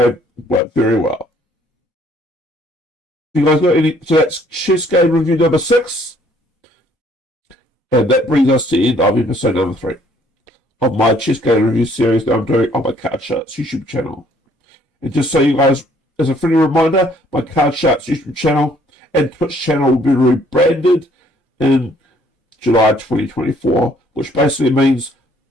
very well. You guys got any? So that's chess game review number 6, and that brings us to the end of episode number 3 of my chess game review series that I'm doing on my Card Sharks YouTube channel. And just so you guys, as a friendly reminder, my Card Sharks YouTube channel and Twitch channel will be rebranded in July 2024, which basically means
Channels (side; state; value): both; normal; correlation 0.62